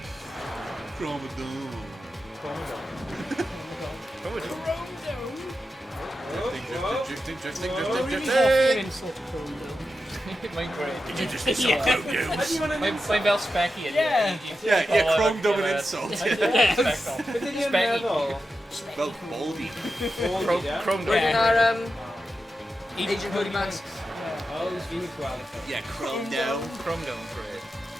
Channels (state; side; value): normal; both; correlation 0.90